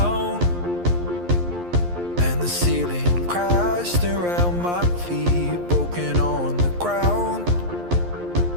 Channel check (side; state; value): left; late; 11 ms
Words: and the ceiling crashed around my feet, broken on the ground.